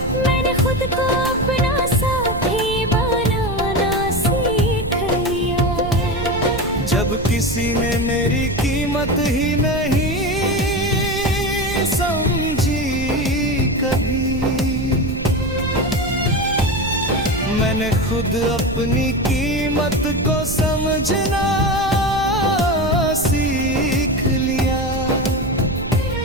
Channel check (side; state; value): right; noise; rumble, 8 dB below the sound